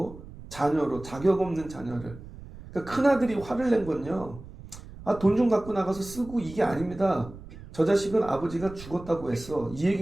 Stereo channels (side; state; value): right; noise; rumble, 16 dB below the sound